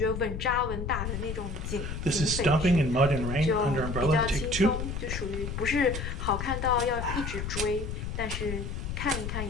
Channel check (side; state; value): left; noise; rumble, 5 dB below the sound